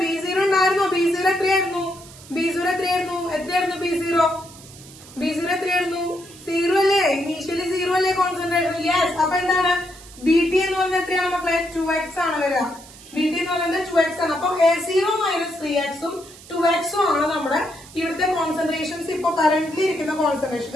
B0 ഉണ്ടായിരുന്നോ? B0 എത്രയായിരുന്നു? B0 എത്രയായിരുന്നു? എത്രയായിരുന്നു B0? B0 എത്രയായിരുന്നു? 0 അല്ലേ? ഇനീഷ്യലി 0 അല്ലേ കോൺസെൻട്രേഷൻ? യെസ്. അപ്പൊ എന്താണ്? ബി ടി എന്ന് പറയുന്നത് എത്രയാണ് മക്കളെ? 2x ആണ് വരിക. ബി ടി എന്ന് പറയുന്നത് 2x ആണ്. അപ്പൊ A0 മൈനസ് 3x ഉം 2x ഉം ആണ് നമ്മുടെ ഇവിടുത്തെ കോൺസെൻട്രേഷൻസ്. ഇപ്പൊ കറന്റ്ലി ഇരിക്കുന്ന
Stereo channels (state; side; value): noise; right; hiss, 20 dB below the sound